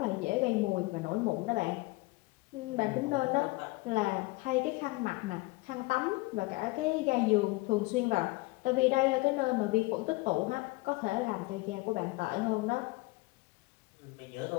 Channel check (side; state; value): right; quieter; 23.2 dB